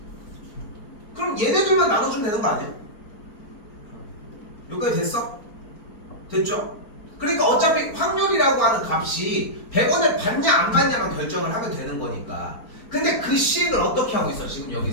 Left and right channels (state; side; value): late; right; 4.4 ms